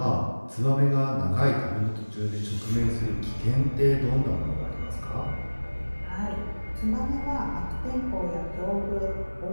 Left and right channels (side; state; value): both; inverted; correlation -1.00